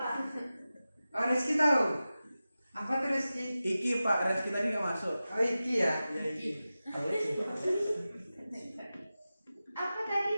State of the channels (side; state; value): both; inverted; correlation -0.95